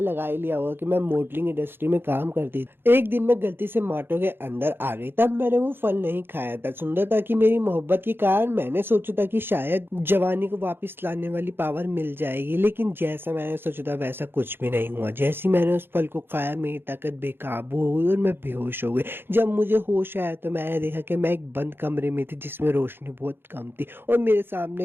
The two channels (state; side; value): late; left; 0.10 ms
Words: लगा ही लिया होगा कि मैं मॉडलिंग इंडस्ट्री में काम करती थी। एक दिन मैं गलती से मार्टो के अंदर आ गई, तब मैंने वो फल नहीं खाया था। सुंदरता की मेरी मोहब्बत के कारण मैंने सोचा था कि शायद जवानी को वापस लाने वाली पावर मिल जाएगी, लेकिन जैसा मैंने सोचा था वैसा कुछ भी नहीं हुआ। जैसे ही मैंने उस फल को खाया मेरी ताकत बेकाबू हो गई और मैं बेहोश हो गई। जब मुझे होश आया तो मैंने देखा कि मैं एक बंद कमरे में थी जिसमें रोशनी बहुत कम थी और मेरे सामने